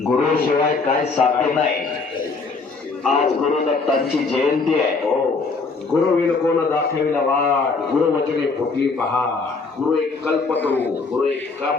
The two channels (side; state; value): right; quieter; 4.3 dB